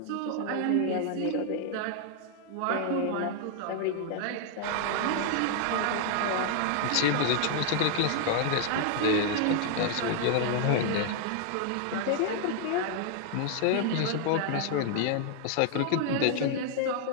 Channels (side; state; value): both; different; correlation 0.00